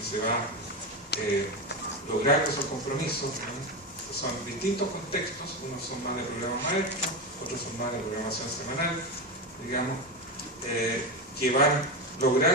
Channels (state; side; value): normal; both; correlation 0.16